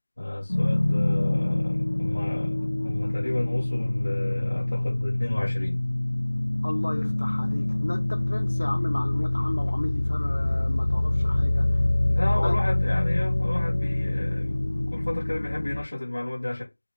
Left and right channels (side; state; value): both; inverted; correlation -1.00